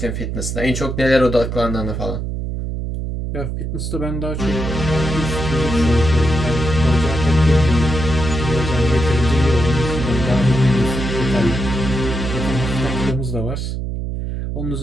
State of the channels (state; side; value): noise; right; hum, 4 dB below the sound